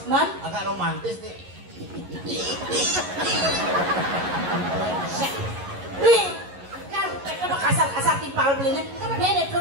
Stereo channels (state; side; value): late; left; 11 ms